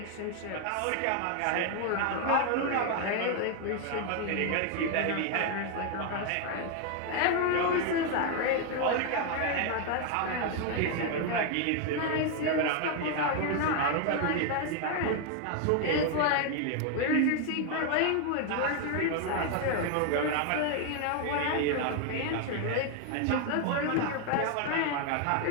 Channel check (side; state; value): both; different; correlation 0.01